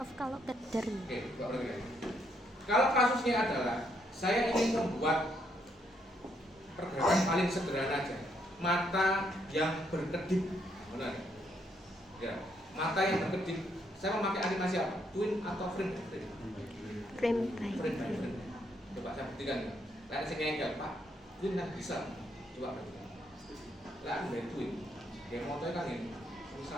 kalau keder. Oke, kalau kasusnya adalah saya ingin membuat pergerakan paling sederhana aja, mata yang berkedip, benar? Ya, mata yang berkedip. Saya memakai animasi apa? Twin atau frame by frame? Frame by Frame by frame. Coba saya buktikan ya. Lihat saya ngengkel, Pak. Twin kan bisa. Coba buktikan. Lihat dari twin. Kayak motornya kan ini,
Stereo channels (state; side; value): normal; both; correlation 0.74